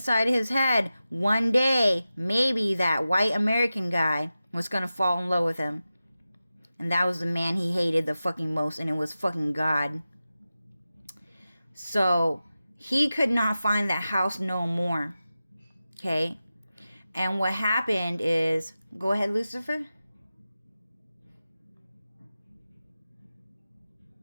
his head, one day, maybe that white American guy was going to fall in love with him. And that was the man he hated the fucking most, and it was fucking God. So he could not find that house no more. Okay? And what happened is, go ahead, Lucifer.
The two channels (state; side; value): inverted; both; correlation -0.94